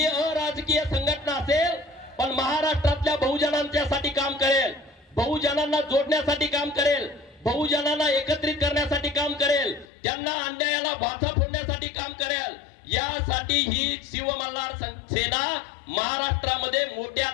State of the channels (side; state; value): right; drops out; at 9.9 s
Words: अराजकीय संघटना असेल पण महाराष्ट्रातल्या बहुजनांच्यासाठी काम करेल, बहुजनांना जोडण्यासाठी काम करेल, बहुजनांना एकत्रित करण्यासाठी काम करेल, त्यांना अन्यायाला भाचा फोडण्यासाठी काम करेल। यासाठी ही शिव मल्हार सेना महाराष्ट्रामध्ये मोठ्या